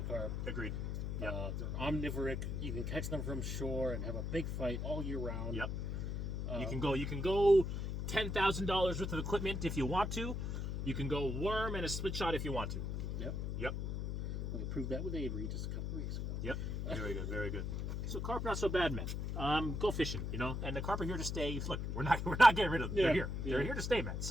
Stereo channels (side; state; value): left; noise; hum, 2 dB below the sound